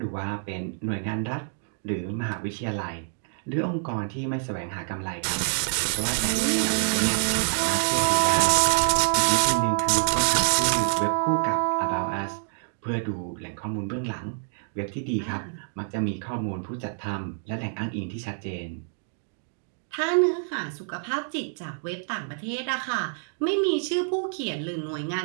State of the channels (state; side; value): silent; left; 60 dB below the other